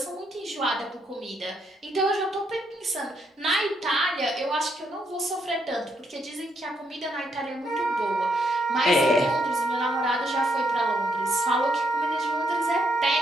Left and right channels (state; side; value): normal; both; correlation 0.76